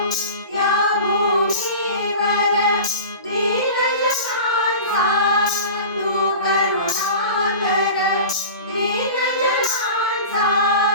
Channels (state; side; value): inverted; both; correlation -0.35